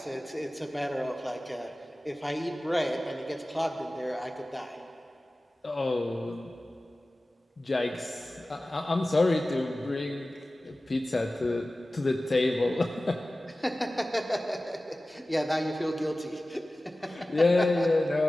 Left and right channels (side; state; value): both; normal; correlation 0.96